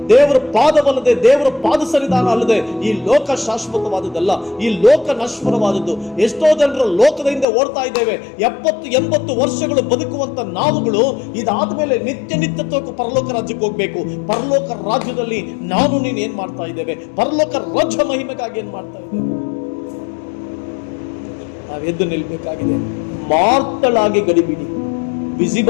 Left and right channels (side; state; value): right; drops out; at 7.5 s